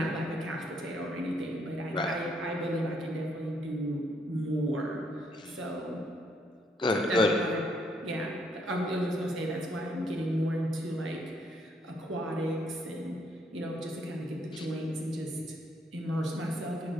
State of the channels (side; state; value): both; normal; correlation 0.71